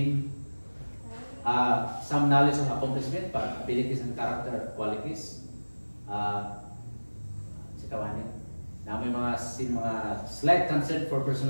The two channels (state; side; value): inverted; both; correlation -1.00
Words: Some knowledge of accomplishment, abilities and character qualities. Si Kawanin. Na may mga slight concern for